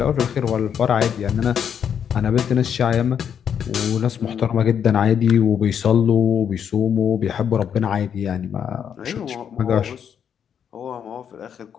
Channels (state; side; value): quieter; right; 8.2 dB